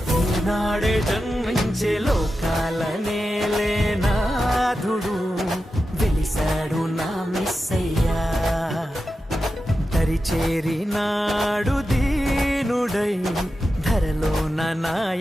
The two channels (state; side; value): normal; both; correlation 0.91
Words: ఈనాడే జన్మించే లోకాల నేలే నాథుడు వెలిశాడు నా మెస్సయ్యా. దరి చేరినాడు దీనుడై ధరలోన నా